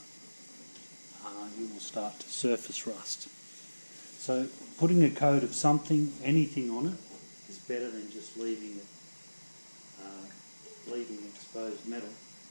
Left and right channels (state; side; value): inverted; both; correlation -1.00